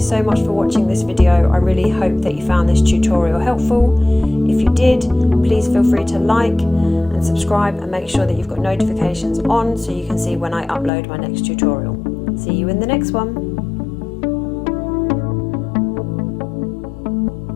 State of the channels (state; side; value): drops out; right; at 10.9 s